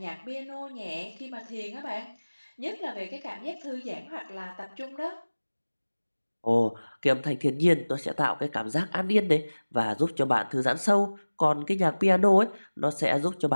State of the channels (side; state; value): both; inverted; correlation -1.00